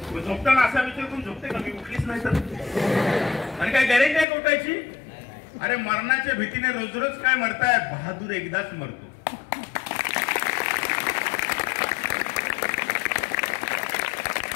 झोपताना असा विचार करून झोपते का मी उठलीच नाही तर? आणि काय गॅरेंटी आहे उठायची? अरे मरणाच्या भीतीने रोज रोज काय मरताय? बहादूर एकदाच मरतो.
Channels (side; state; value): right; drops out; at 4.2 s